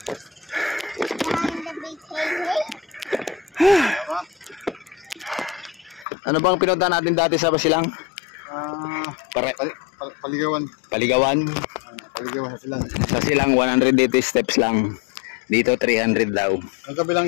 Ano bang pinunta natin dati sa Basilang? Paligawan. Paligawan. Paligawan sa silang. Sa Silang 180 steps lang. Dito 300 daw. Ang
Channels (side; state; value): right; drops out; at 6.1 s